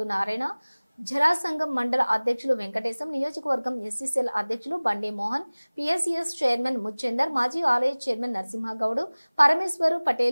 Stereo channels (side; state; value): both; inverted; correlation -1.00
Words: నారాయణ, జరాసంగం మండల అధ్యక్షులు వెంకటేశం, నియోజకవర్గం ఎస్సీసీఎల్ అధ్యక్షులు బండి మోహన్, పిఎస్సిఎస్ చైర్మన్ ముచ్చేందర్, మాజీ ఆలయ చైర్మన్ నరసింహగౌడ్, పరమేశ్వరు